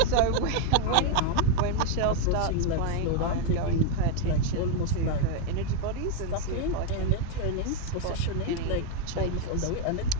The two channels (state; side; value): different; both; correlation 0.01